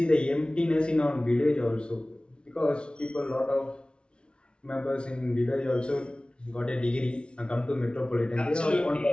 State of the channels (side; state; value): right; late; 0.057 ms